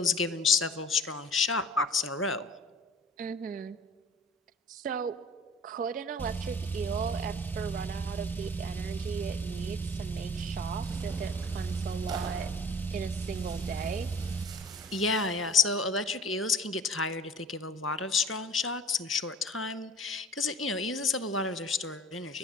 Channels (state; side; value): normal; both; correlation 0.46